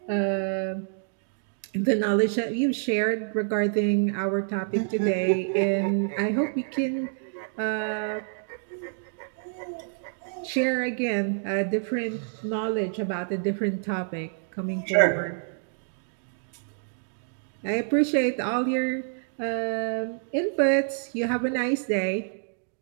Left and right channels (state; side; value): silent; left; digital silence